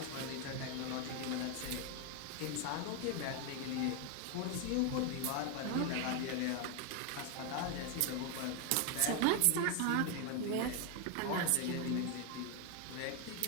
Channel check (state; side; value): different; both; correlation 0.01